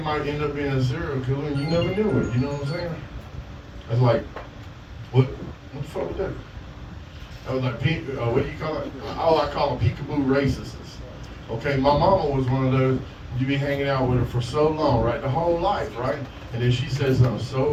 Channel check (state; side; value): identical; both; correlation 1.00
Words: end up being a serial killer and you never knew it. You know what I'm saying? That's like, what the fuck was that? That was like, what do you call it? Oh, I call them peekaboo racists. Okay, my mama was one of those. you be hanging out with her for so long, right? The whole life, right? And then she said something